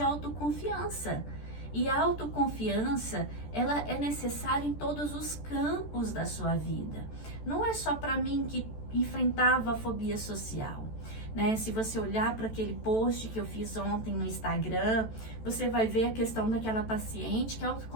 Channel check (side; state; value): right; late; 14 ms